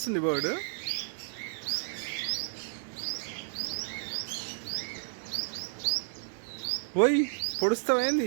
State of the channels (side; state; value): left; silent; digital silence